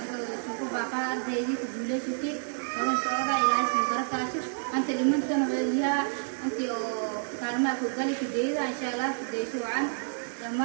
تنكو بقى أرضي تقولي شتي ورن صعبة إلى اسم بركة أنت اللي من تنوليها أنت كلمة تقولي في ديدا إن شاء الله في ديشو عن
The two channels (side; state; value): left; silent; digital silence